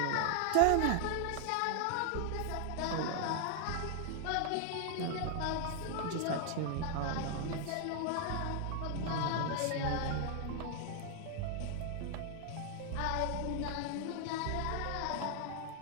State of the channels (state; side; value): different; both; correlation 0.00